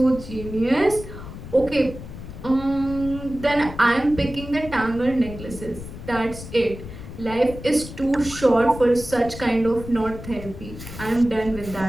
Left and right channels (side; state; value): left; noise; rumble, 12 dB below the sound